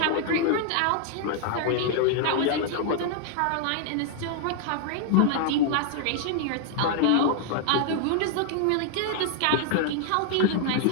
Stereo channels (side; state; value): both; different; correlation -0.01